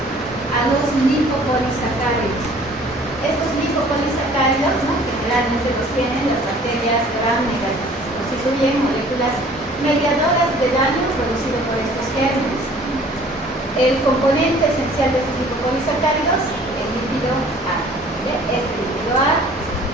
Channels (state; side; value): normal; both; correlation 0.52